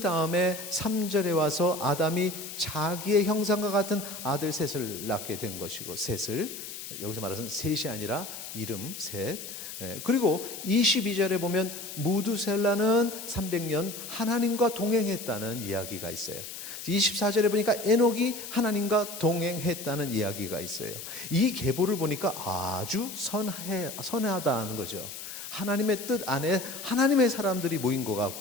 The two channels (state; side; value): noise; left; hiss, 10 dB below the sound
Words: 3절에 와서 아담이 자기의 형상과 같은 아들 셋을 낳게 된 것이고, 셋을 여기서 말해서는 셋이 아니라 이름 셋. 그리고 22절에 보면 무두셀라는 300년 하나님과 동행했다는 이야기가 있어요. 24절에 보니까 에녹이 하나님과 동행했다는 이야기가 있어요. 이 계보를 보니까 아주 선하다는 거죠. 하나님의 뜻 안에 하나님의 사람들이 모인 것